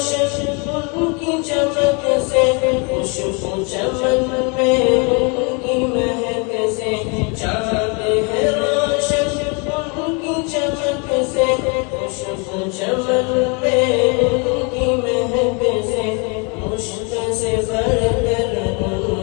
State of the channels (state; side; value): quieter; right; 33.2 dB